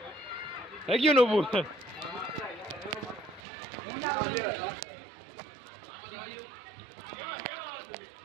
થઈ ગયું નવું.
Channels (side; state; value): left; drops out; at 3.4 s